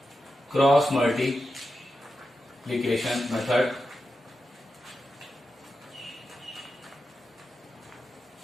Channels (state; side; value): normal; both; correlation 0.89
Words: Cross multiplication method.